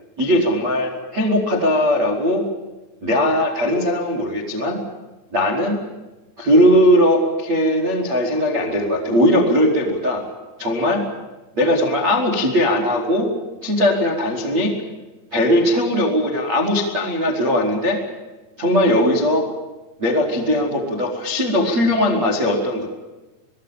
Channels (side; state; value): left; late; 8.6 ms